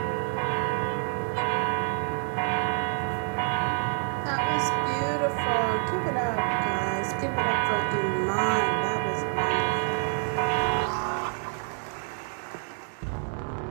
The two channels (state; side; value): silent; left; 56 dB below the other